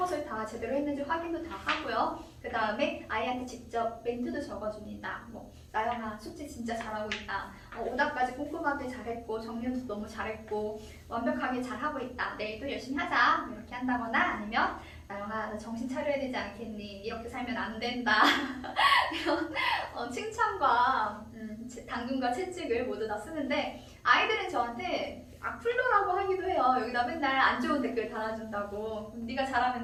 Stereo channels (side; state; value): both; identical; correlation 1.00